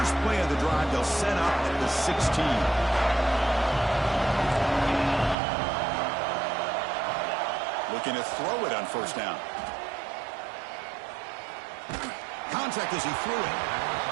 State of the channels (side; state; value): left; drops out; at 5.4 s